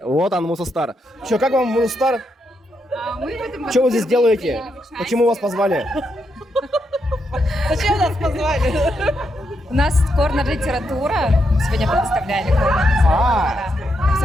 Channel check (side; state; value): both; normal; correlation 0.81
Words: Вот он, Мусостар. Че, как вам, Мусостар? Что вы здесь делаете? Почему вас позвали? Зачем нас позвали? У нас корнер-литература. Сегодня представляли корнер-литература.